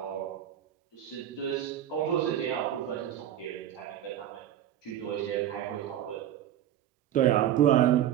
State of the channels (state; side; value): quieter; left; 11.2 dB